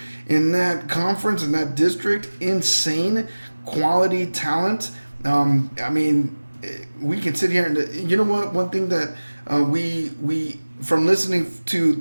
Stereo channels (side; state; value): both; inverted; correlation -1.00